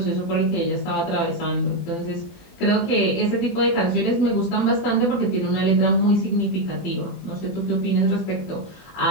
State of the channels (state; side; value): late; right; 21 ms